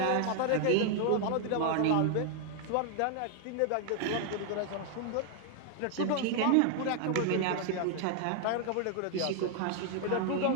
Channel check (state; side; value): different; both; correlation 0.00